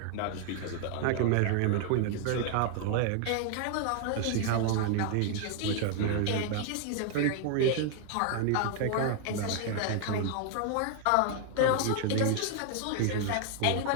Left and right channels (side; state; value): both; different; correlation 0.00